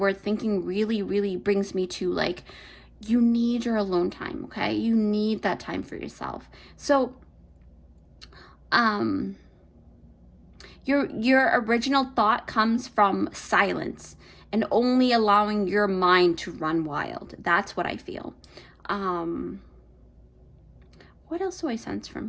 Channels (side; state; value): both; identical; correlation 1.00